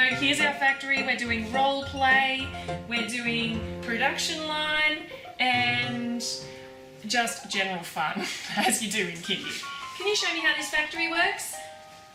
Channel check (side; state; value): both; identical; correlation 1.00